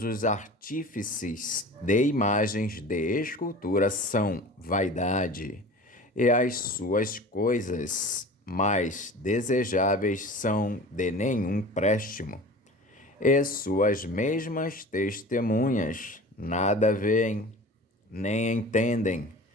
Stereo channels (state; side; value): normal; both; correlation 0.38